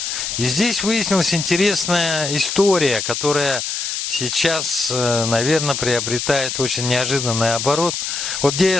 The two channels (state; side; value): noise; left; hiss, 3 dB below the sound